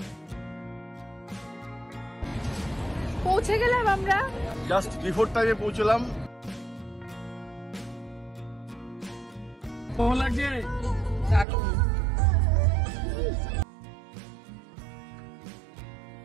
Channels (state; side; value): drops out; left; at 11.5 s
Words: পৌঁছে গেলাম আমরা, জাস্ট বিফোর টাইমে পৌঁছলাম। ভালো লাগছে,